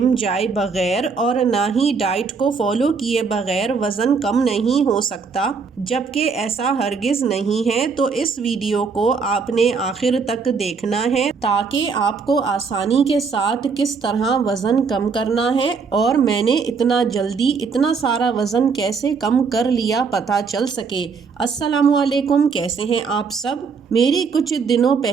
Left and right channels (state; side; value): quieter; left; 5.2 dB